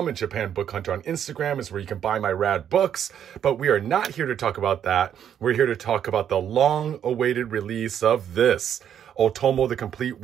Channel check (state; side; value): quieter; left; 9.3 dB